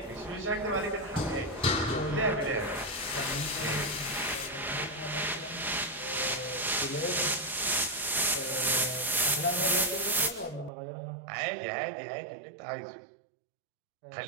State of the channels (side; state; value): left; drops out; at 10.7 s